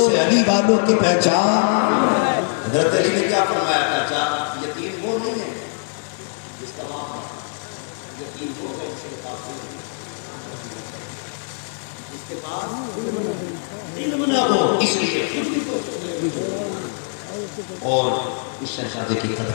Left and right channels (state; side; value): silent; right; 64 dB below the other